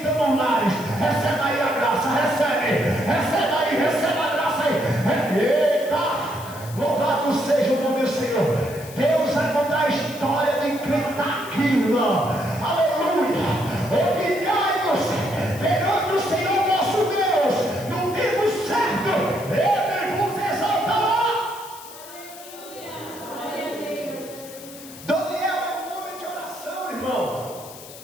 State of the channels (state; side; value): noise; left; hiss, 17 dB below the sound